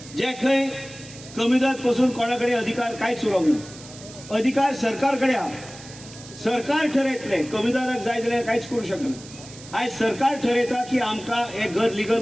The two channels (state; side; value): noise; right; hiss, 17 dB below the sound